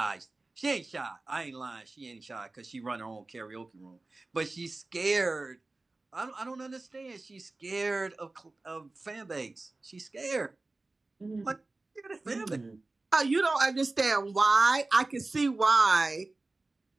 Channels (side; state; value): left; quieter; 3.2 dB